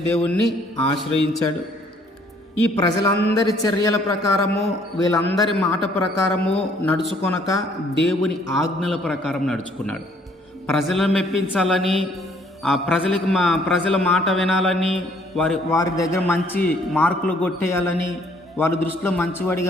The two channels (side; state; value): both; normal; correlation 0.63